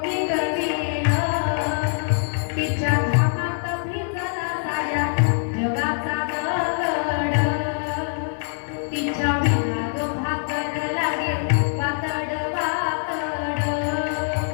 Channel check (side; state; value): right; silent; 63 dB below the other